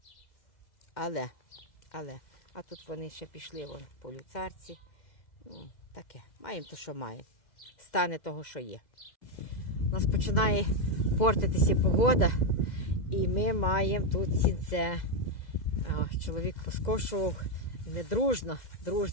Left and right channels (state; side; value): late; right; 2.0 ms